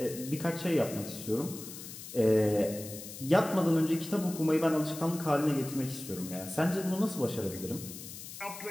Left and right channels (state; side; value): noise; left; hiss, 12 dB below the sound